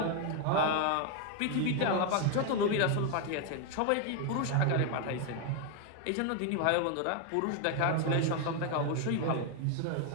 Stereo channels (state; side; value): different; both; correlation 0.01